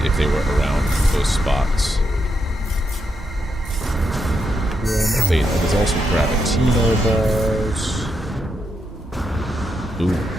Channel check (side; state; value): both; normal; correlation 0.82